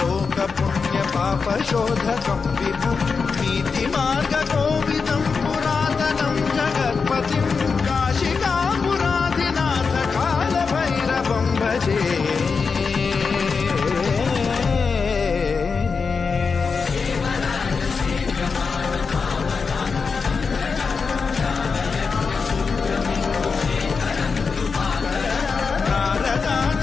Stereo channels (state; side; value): quieter; right; 5.1 dB